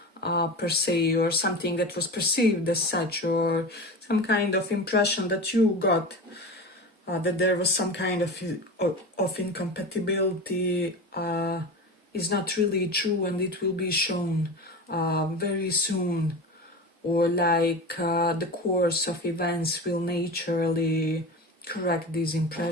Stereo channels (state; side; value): normal; both; correlation 0.28